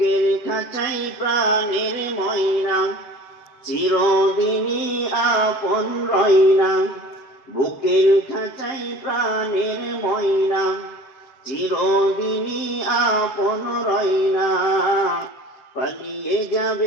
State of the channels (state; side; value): late; right; 7.6 ms